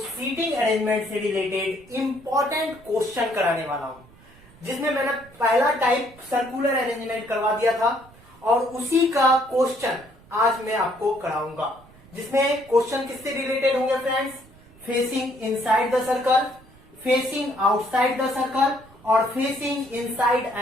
अरेंजमेंट से रिलेटेड इंपॉर्टेंट क्वेश्चन कराने वाला हूं, जिसमें मैंने पहला टाइप सर्कुलर अरेंजमेंट करवा दिया था और उसी का क्वेश्चन आज मैं आपको कराऊंगा, जिसमें क्वेश्चन किससे रिलेटेड होंगे friends? Facing inside the circle, facing outside the circle और facing inside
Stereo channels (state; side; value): noise; right; rumble, 25 dB below the sound